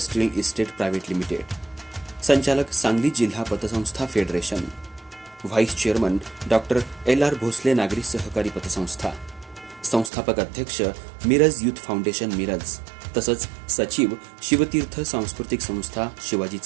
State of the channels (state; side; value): drops out; left; at 10.1 s